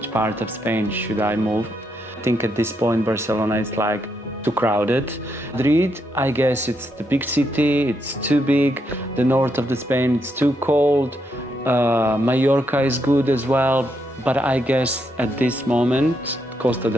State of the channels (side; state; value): both; normal; correlation 0.79